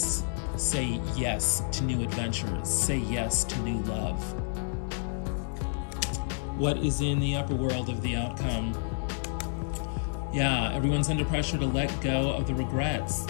Say yes to new adventures. Say yes to new love. What is in the upper world of the outcome? Yeah, everyone's under pressure to let go of the regrets.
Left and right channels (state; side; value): silent; right; digital silence